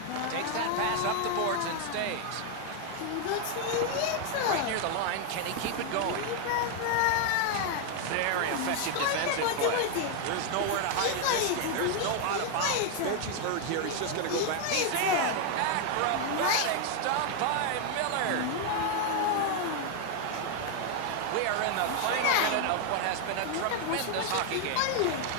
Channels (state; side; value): different; both; correlation 0.00